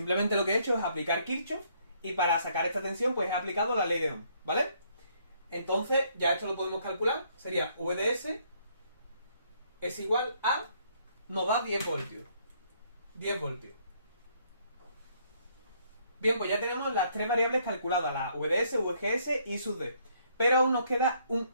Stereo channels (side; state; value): both; inverted; correlation -0.68